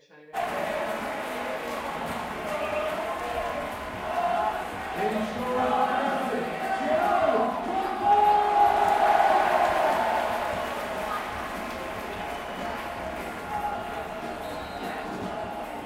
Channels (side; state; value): both; identical; correlation 1.00